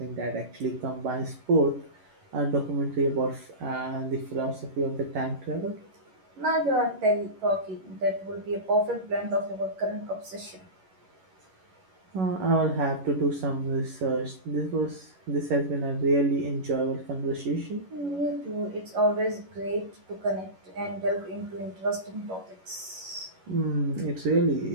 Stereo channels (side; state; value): left; late; 11 ms